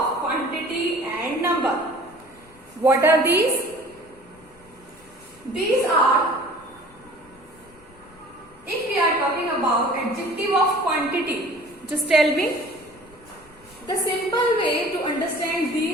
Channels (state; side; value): noise; left; rumble, 27 dB below the sound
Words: quantity and number. What are these? These are, if we are talking about adjective of quantity, just tell me the simple way to understand